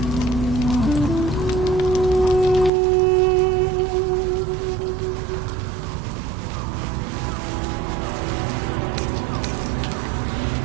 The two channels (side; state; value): left; drops out; at 2.7 s